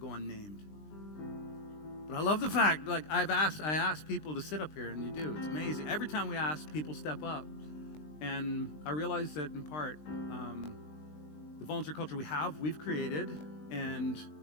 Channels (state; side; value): late; right; 20 ms